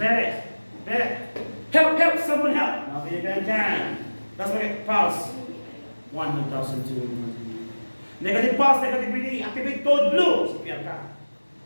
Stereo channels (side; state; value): both; inverted; correlation -1.00